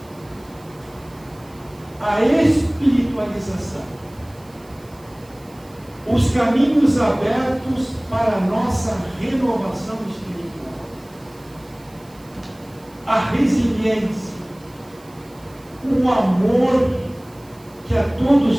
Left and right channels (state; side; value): noise; right; hiss, 27 dB below the sound